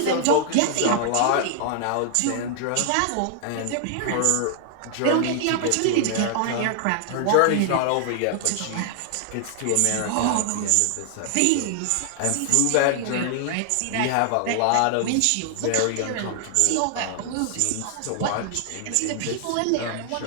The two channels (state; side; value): different; both; correlation 0.00